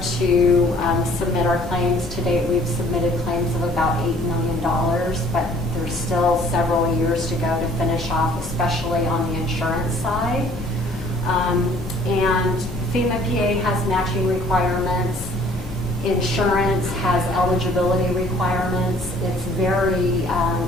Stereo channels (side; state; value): both; normal; correlation 0.55